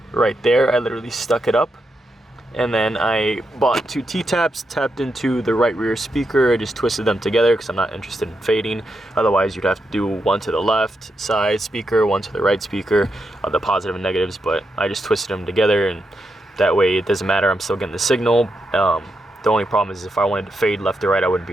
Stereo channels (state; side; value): normal; both; correlation 0.84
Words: right there. I literally stuck it up, and then I bought 2 T-taps, tapped into the right rear speaker. I just twisted them together because I'm not interested in fading. Otherwise, you'd have to do one to the left side speaker, one to the right speaker, the positive and negatives, but I just twisted them together, and that way it doesn't matter, I'm still getting the signal. The only problem is if I wanted to fade left or right, I wouldn't be